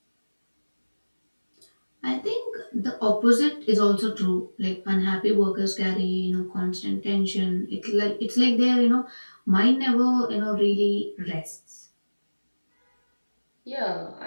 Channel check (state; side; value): inverted; both; correlation -1.00